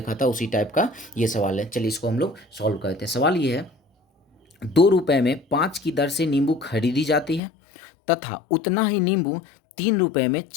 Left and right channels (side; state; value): right; drops out; at 7.4 s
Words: था उसी टाइप का ये सवाल है। चलिए इसको हम लोग सॉल्व करते हैं। सवाल ये है, 2 रुपए में 5 की दर से नींबू खरीदी जाती है तथा उतना ही नींबू 3 रुपए में